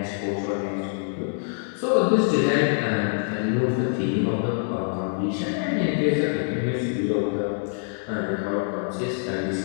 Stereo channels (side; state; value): right; silent; digital silence